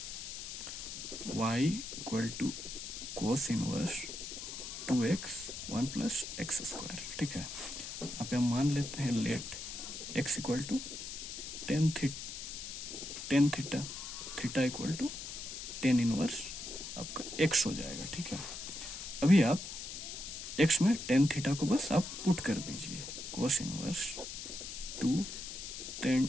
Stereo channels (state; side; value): noise; left; hiss, 8 dB below the sound